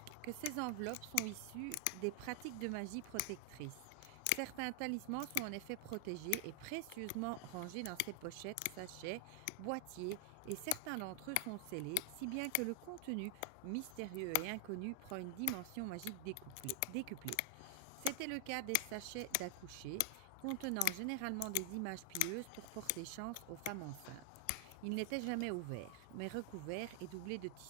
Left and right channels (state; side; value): different; both; correlation 0.00